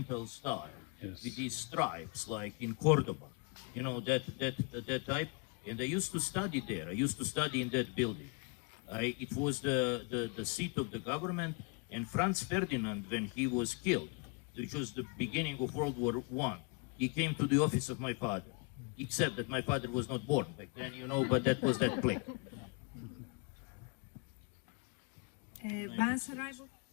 style, yes, with these stripes, like in Cordoba, you know, that type. And I used to study there. I used to study in that building. It was the seat of the government, and Franz Ferdinand, when he was killed, which was the beginning of World War I, he came to the office of my father, except that my father was not born back then, you know, but that was that place.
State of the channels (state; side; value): quieter; right; 33.1 dB